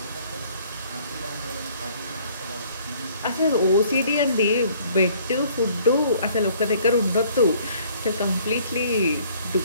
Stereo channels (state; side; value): inverted; both; correlation -0.59